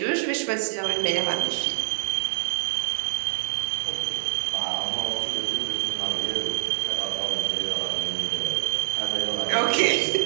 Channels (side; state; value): left; silent; 61 dB below the other